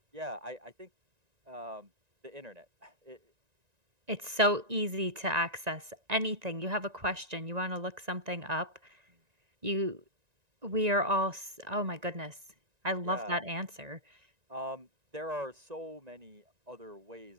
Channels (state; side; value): late; left; 1.9 ms